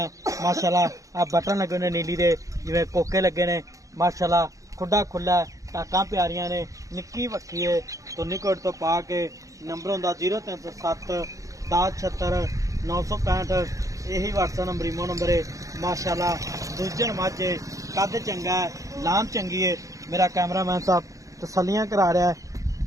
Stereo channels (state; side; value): late; left; 0.16 ms